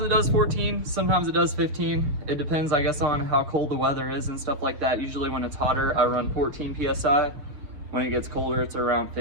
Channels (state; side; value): late; left; 6.9 ms